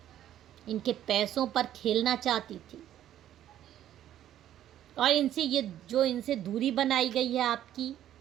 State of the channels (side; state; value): left; quieter; 11.7 dB